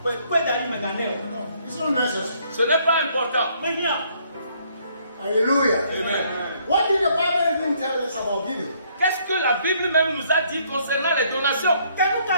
not necessary. Ce n'est pas important. Hallelujah. Amen. What did the Bible even tell us about giving? Qu'est-ce que la Bible même nous a dit concernant les donations?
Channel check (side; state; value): both; inverted; correlation -0.66